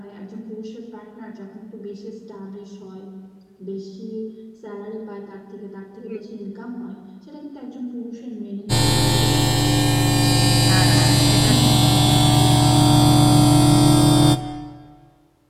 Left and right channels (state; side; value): identical; both; correlation 1.00